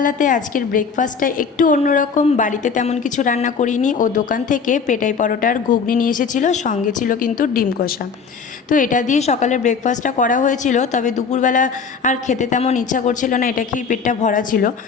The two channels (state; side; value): quieter; right; 5.7 dB